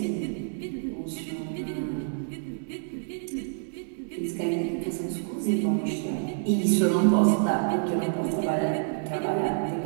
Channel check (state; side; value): silent; left; 60 dB below the other